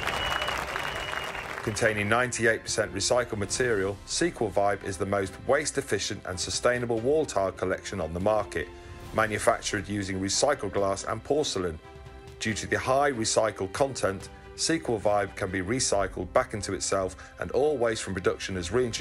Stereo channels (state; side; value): identical; both; correlation 1.00